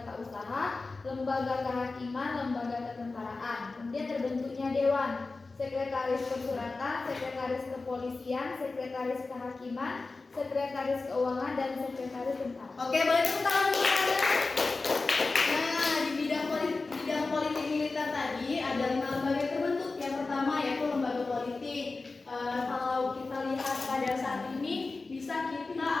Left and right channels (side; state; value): right; quieter; 3.7 dB